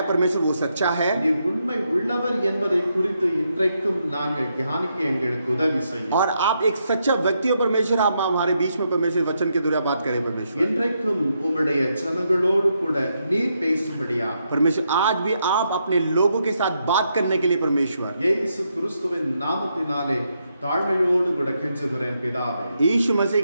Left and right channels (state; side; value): inverted; both; correlation -0.80